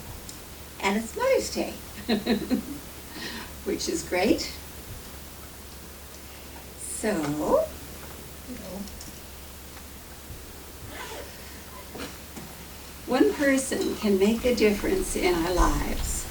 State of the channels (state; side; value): identical; both; correlation 1.00